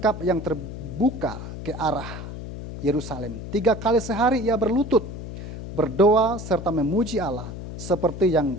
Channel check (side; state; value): left; noise; hum, 9 dB below the sound